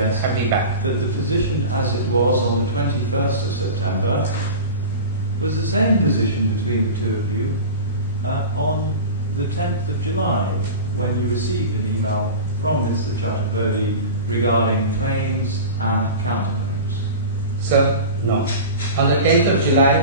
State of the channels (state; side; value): inverted; both; correlation -0.31